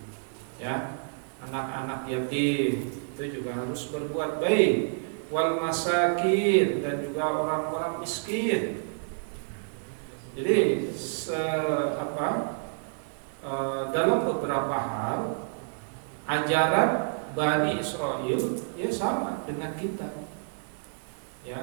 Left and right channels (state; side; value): silent; left; digital silence